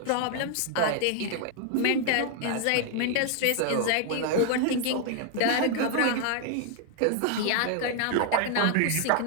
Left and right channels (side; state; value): both; different; correlation 0.00